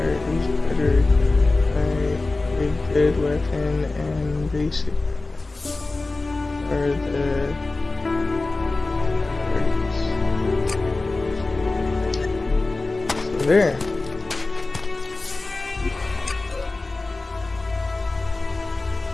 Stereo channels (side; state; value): right; quieter; 3.3 dB